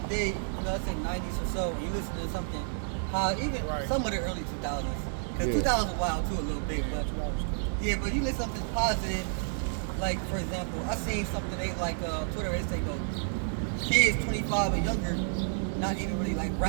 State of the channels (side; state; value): left; silent; digital silence